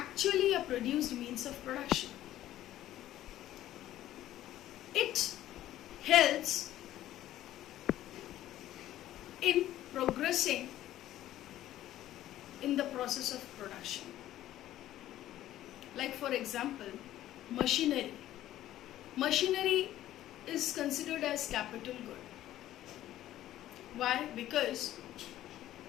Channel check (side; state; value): right; quieter; 13.5 dB